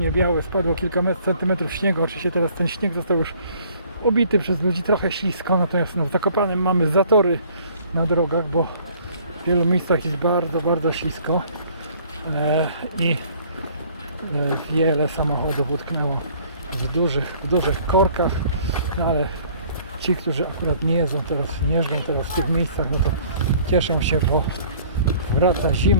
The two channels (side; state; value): both; inverted; correlation -0.55